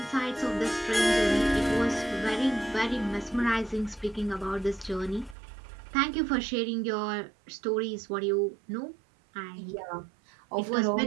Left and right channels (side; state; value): left; drops out; at 5.4 s